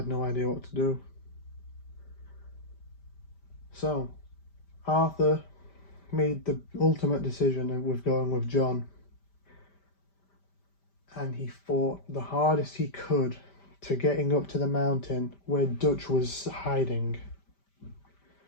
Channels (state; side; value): late; right; 5.1 ms